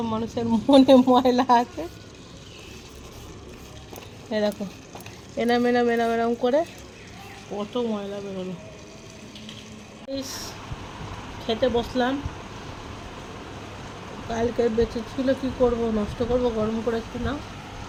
মানুষের মনে ময়লা আছে, এ দেখো এনাম করে কত ময়লা বেরোলো। খেতে বসলাম, কালকে বেঁচে ছিল, কি করব, নষ্ট করব, গরম করে না।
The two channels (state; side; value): identical; both; correlation 1.00